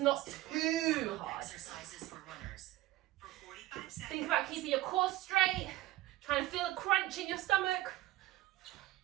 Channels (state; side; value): quieter; left; 16.6 dB